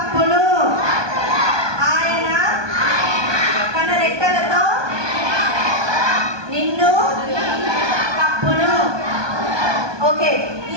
ఆయన తన రెక్కలతో నిన్ను కప్పును. ఓకే,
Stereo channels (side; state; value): left; late; 1.2 ms